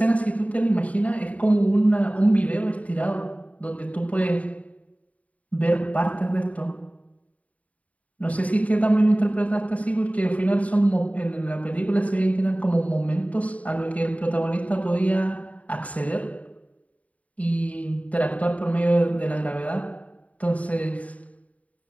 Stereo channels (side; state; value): right; late; 0.068 ms